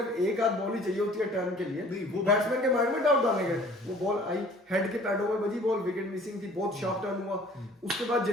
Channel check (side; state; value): both; normal; correlation 0.51